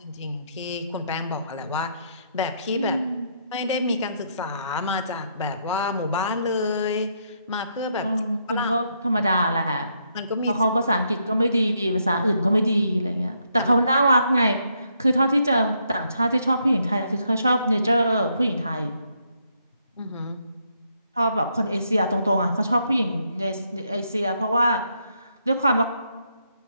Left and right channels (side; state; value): both; inverted; correlation -0.76